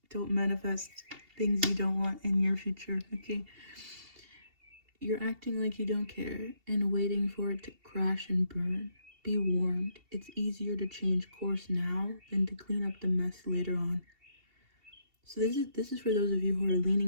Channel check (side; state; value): left; late; 2.7 ms